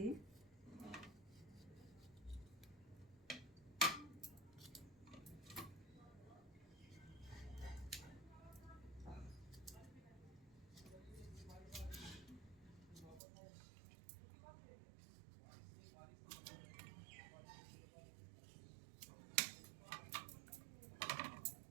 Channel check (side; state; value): left; drops out; at 13.2 s